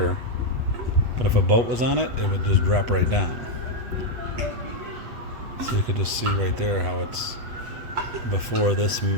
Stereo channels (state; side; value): late; left; 8.2 ms